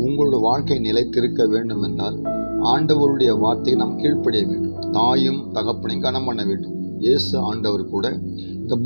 உங்களோட வாழ்க்கை நிலைத்திருக்க வேண்டும் என்றால் ஆண்டவருடைய வார்த்தையை நாம் கீழ்ப்படிய வேண்டும். தாயும் தகப்பனையும் கனம் பண்ண வேண்டும். இயேசு ஆண்டவர் கூட இந்த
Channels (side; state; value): both; inverted; correlation -1.00